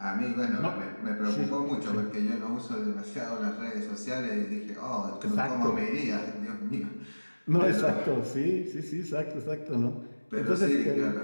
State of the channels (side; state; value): both; inverted; correlation -1.00